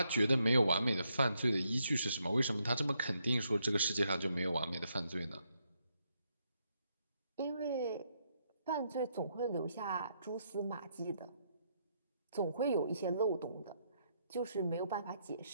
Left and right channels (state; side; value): inverted; both; correlation -0.76